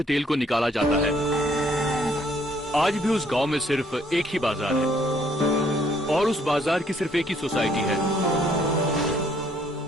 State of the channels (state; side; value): normal; both; correlation 0.65